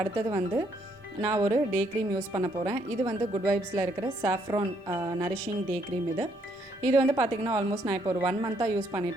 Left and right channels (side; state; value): both; normal; correlation 0.71